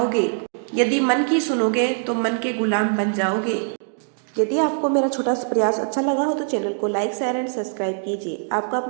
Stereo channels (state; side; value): silent; left; digital silence